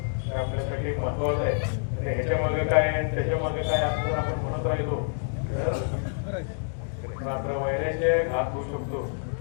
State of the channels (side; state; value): right; silent; digital silence